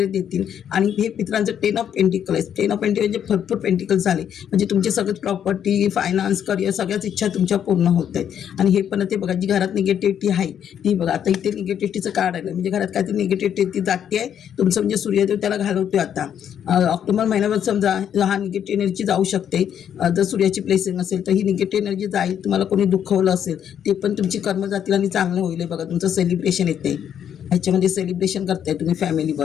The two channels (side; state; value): right; quieter; 9.1 dB